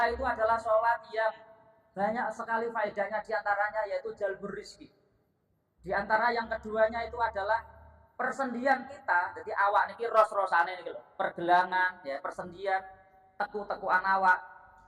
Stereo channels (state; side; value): identical; both; correlation 1.00